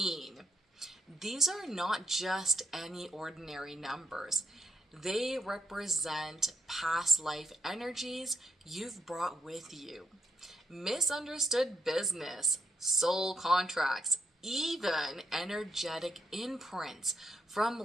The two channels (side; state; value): both; normal; correlation 0.77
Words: These are not just any ordinary numbers. They represent past life energies you've brought with you, misunderstood business, soul contracts, even energetic imprints